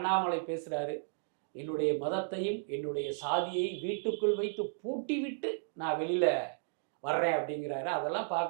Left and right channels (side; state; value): left; silent; digital silence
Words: பேசுறாரு, என்னுடைய மதத்தையும் என்னுடைய சாதியை வீட்டுக்குள் வைத்து பூட்டி விட்டு நான் வெளியில வர்றேன் அப்படிங்கிறாரு. அதெல்லாம்